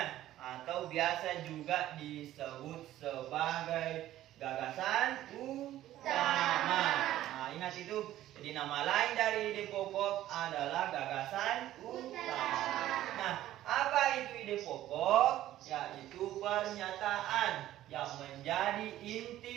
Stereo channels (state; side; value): quieter; left; 13.7 dB